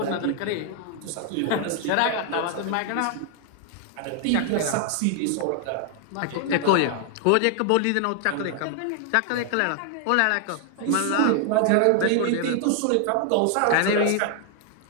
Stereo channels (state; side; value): different; both; correlation 0.00